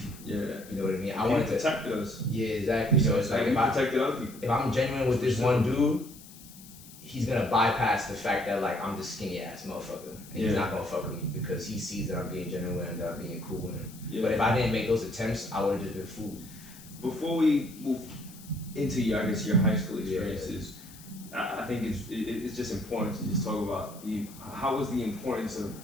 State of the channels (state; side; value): noise; left; hiss, 19 dB below the sound